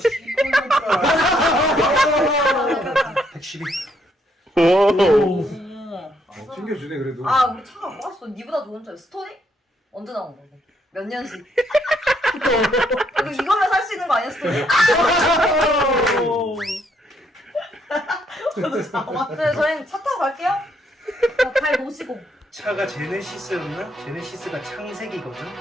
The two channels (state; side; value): normal; both; correlation 0.73